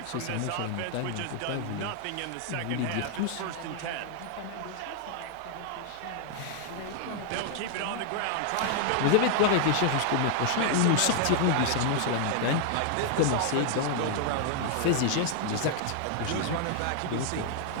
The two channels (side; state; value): both; different; correlation 0.00